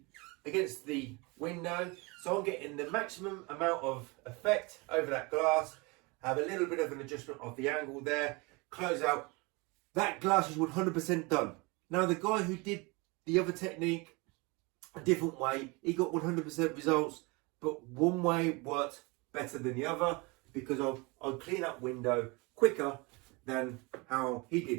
against the window, so I'm getting the maximum amount of effect over that glass. Have a little bit of an adjustment of the angle there, close out. That glass is 100% done. Now the guy who did the other technique a different way, he got 100% results, but one way worked better than the other because I'll clean that window quicker than how he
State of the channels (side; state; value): left; quieter; 27.0 dB